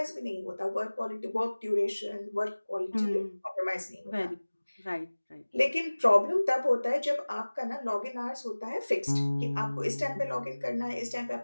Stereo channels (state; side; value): inverted; both; correlation -1.00